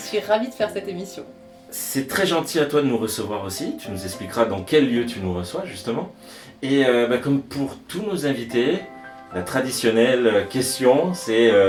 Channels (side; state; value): both; identical; correlation 1.00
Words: ravie de faire cette émission. C'est très gentil à toi de nous recevoir aussi, tu nous expliqueras dans quel lieu tu nous reçois justement. Et comme pour tous nos invités, la traditionnelle question c'est